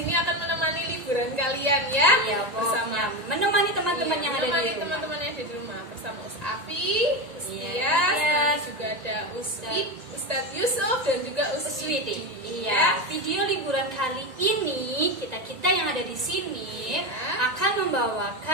akan menemani liburan kalian ya. Iya, bersama menemani teman-teman yang ada di rumah. Teman-teman yang ada di rumah bersama Afi, Ustias, juga ada Ustadz Yusuf dan juga Uswiti. Iya, video liburan kali ini kita yang ada di sini akan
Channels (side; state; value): left; late; 1.8 ms